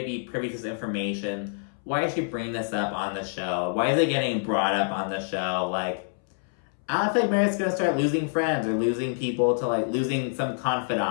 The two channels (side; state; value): right; silent; 60 dB below the other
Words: be privy to this information. Why is she bringing this up on the show? Why is it getting brought up on the show? Like, I don't think Meredith's gonna start losing friends or losing people to, like, losing some